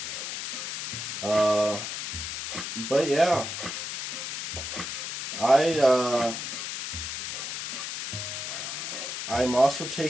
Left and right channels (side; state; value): left; noise; hiss, 5 dB below the sound